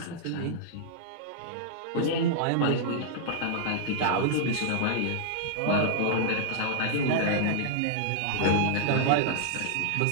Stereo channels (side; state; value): both; different; correlation -0.01